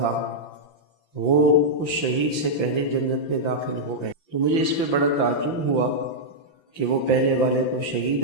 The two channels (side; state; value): right; late; 5.9 ms